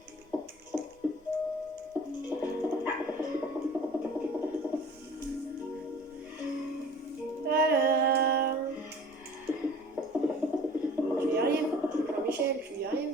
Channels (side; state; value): both; normal; correlation 0.46